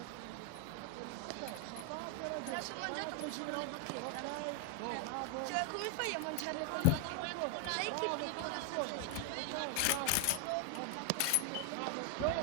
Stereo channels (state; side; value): different; both; correlation 0.00